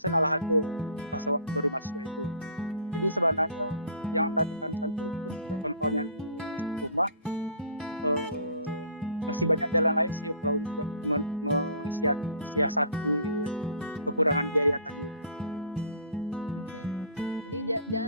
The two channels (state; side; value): inverted; both; correlation -0.47